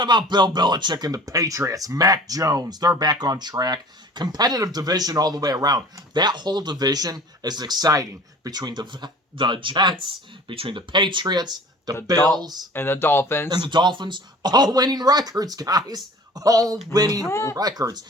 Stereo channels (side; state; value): both; normal; correlation 0.45